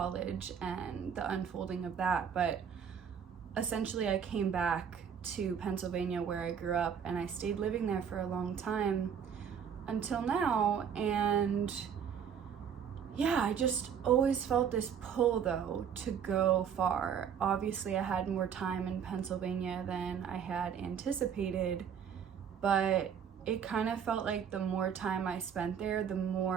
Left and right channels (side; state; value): left; quieter; 7.8 dB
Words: and the unfolding of that. But essentially I came back to Pennsylvania where I grew up, and I stayed living there for a long time until now. And yeah, I just always felt this pull though to go far. Obviously I had more time in Pennsylvania than I had anticipated, but it kind of felt like the more time I spent there, the